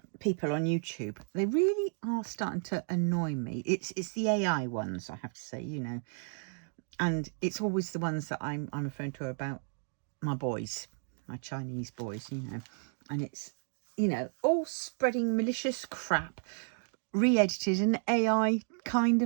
people on YouTube, they really are starting to annoy me. It's the AI ones, I have to say, you know. And it's always the ones that I'm referring to about my boys, my Chinese boys, you know. And it's, you know, all spreading malicious crap, re-edited and AI kind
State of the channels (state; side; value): silent; left; 56 dB below the other